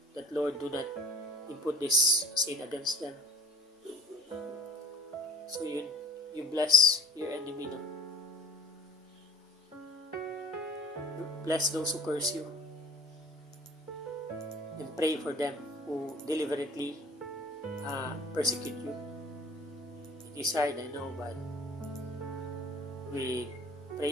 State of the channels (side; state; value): both; normal; correlation 0.49